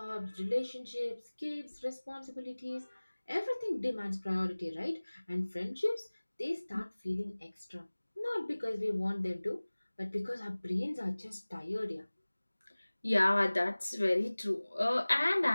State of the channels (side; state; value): both; inverted; correlation -1.00